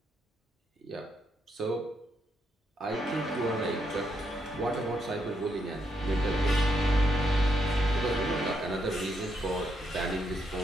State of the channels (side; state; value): both; normal; correlation 0.78